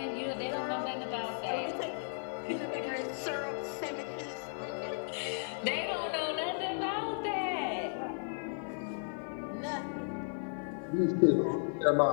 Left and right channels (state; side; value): silent; right; 55 dB below the other